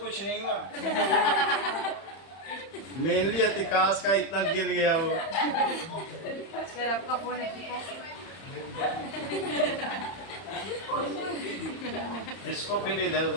नहीं हुआ। मेनली अतिकाश का इतना गिर गया वो। सर आपका फोन है विकास? इसको फिर इधर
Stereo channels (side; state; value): right; late; 31 ms